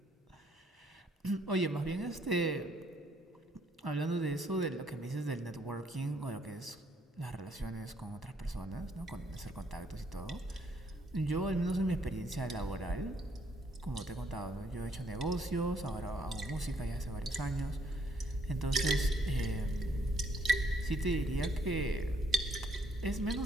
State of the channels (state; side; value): normal; both; correlation 0.68